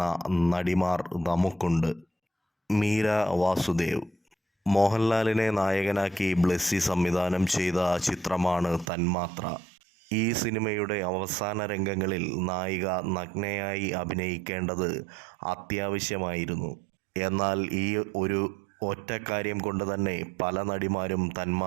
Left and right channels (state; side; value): drops out; left; at 8.8 s